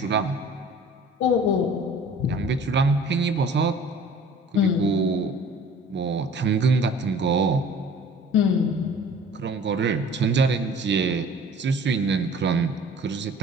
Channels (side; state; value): both; normal; correlation 0.47